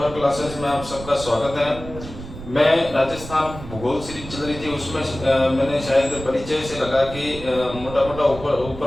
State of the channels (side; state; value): right; noise; rumble, 12 dB below the sound